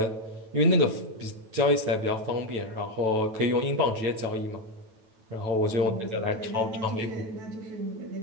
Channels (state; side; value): late; left; 9.1 ms